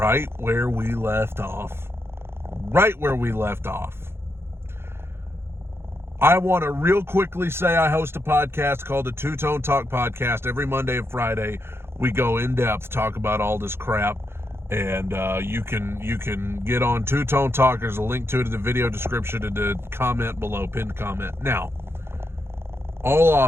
where we left off. Right where we left off. I want to real quickly say I host a podcast called the Two Tone Talk Podcast. Every Monday and Friday, we go in depth, talk about all this crap. And you can get on Two Tone Talk. There's a link to it in the video description and the comment below, pinned comment. Now, all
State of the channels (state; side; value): late; left; 0.12 ms